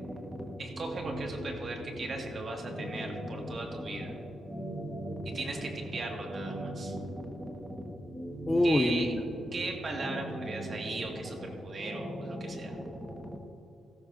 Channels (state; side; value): normal; both; correlation 0.87